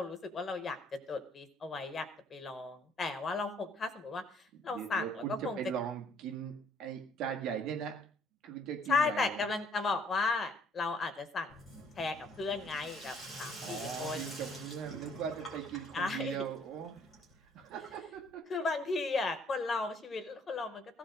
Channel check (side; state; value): both; normal; correlation 0.62